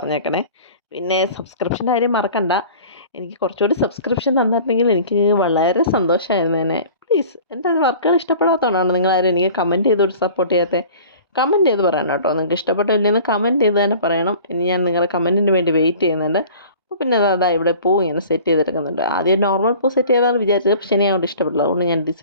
പിന്നെ സബ്സ്ക്രിപ്ഷൻ്റെ കാര്യം മറക്കണ്ട. എനിക്ക് കുറച്ചുകൂടി സബ്സ്ക്രിപ്ഷൻ തന്നിട്ടുണ്ടെങ്കിൽ എനിക്ക് വളരെ സന്തോഷമായിരുന്നേനെ. പ്ലീസ്, എൻ്റെ വർക്കുകൾ ഇഷ്ടപ്പെടാത്തതുകൊണ്ടാണ് നിങ്ങളാരും എനിക്ക് കമൻറ്റ് ചെയ്തൊരു സപ്പോർട്ട് ചെയ്യാത്തത്. കമൻറ്റ് ചെയ്ത് പറയണം കേട്ടോ. നിങ്ങൾക്ക് ഇഷ്ടപ്പെട്ടില്ലെന്ന് കമൻറ്റ് ചെയ്ത് തന്നെ പറയണം. ഇനി ഞാൻ നിങ്ങളുടെ കമൻറ്റിന് വേണ്ടി വെയിറ്റ് ചെയ്യുന്നുണ്ട്. അപ്പോൾ പിന്നെ അതാ ഇവിടെ പൂ ഇങ്ങനെ സെറ്റ് ചെയ്തെടുക്കുന്നുണ്ട്. ആദ്യം നോർമൽ പൂ സെറ്റ് ചെയ്താൽ വിചാരിച്ചത്, പക്ഷേ എനിക്ക് അങ്ങോട്ട് ഇഷ്ടപ്പെട്ടില്ല. അതുകൊണ്ട് ഞാൻ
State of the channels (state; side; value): inverted; both; correlation -0.44